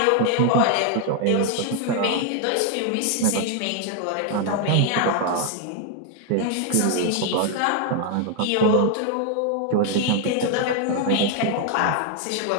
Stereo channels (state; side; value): different; both; correlation 0.00